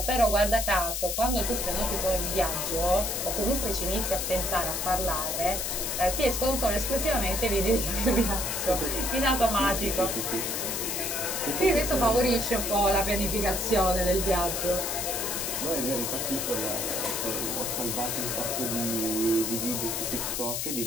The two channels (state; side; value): noise; left; hiss, 2 dB below the sound